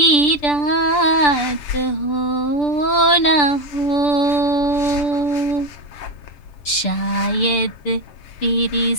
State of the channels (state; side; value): late; right; 6.8 ms